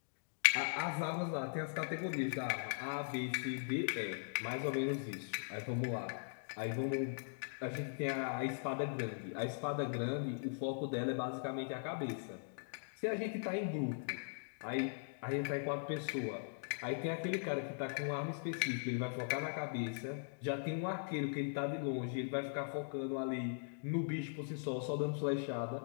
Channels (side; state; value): right; silent; digital silence